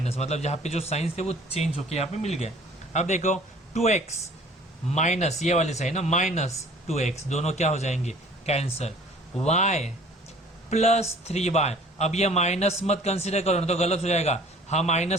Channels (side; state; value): both; normal; correlation 0.51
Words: मतलब यहाँ पे जो साइंस थे वो चेंज होके यहाँ पे मिल गए। अब देखो 2x माइनस ये वाले साइन ना, माइनस 2x, दोनों क्या हो जाएंगे? कैंसल। y प्लस 3y, अब ये माइनस मत कन्सिडर करो ना तो गलत हो जाएगा, हा